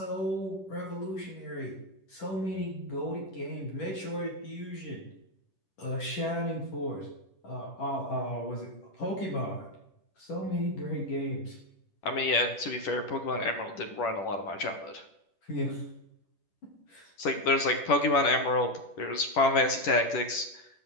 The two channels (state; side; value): late; right; 10 ms